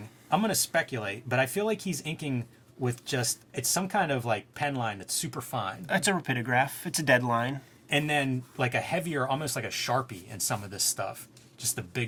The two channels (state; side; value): identical; both; correlation 1.00